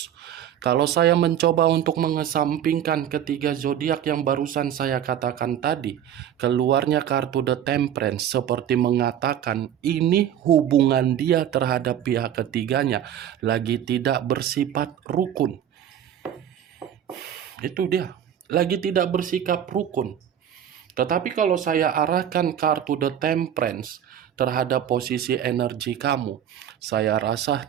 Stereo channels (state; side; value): quieter; left; 10.1 dB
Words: Kalau saya mencoba untuk mengesampingkan ketiga zodiak yang barusan saya katakan tadi, keluarnya kartu The Temperance seperti mengatakan ini hubungan dia terhadap pihak ketiganya lagi tidak bersifat rukun. Itu dia, lagi tidak bersikap rukun. Tetapi kalau saya arahkan kartu The Temperance terhadap posisi energi kamu, saya rasa